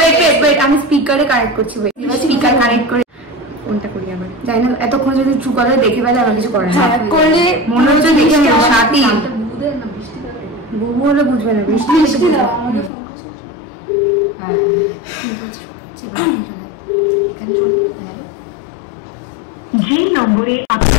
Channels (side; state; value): right; drops out; at 12.9 s